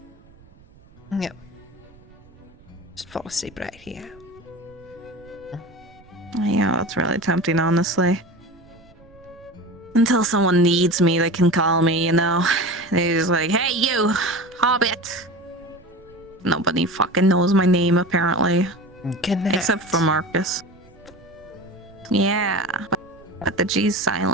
Yep. Just fall asleep right here. Yeah, that's really tempting, honestly. Until someone needs me, they can call me, you know? They're just like, hey, you, Hobbit. Nobody fucking knows my name, apparently. Except for Marcus. Yeah, but the G's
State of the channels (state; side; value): noise; right; rumble, 26 dB below the sound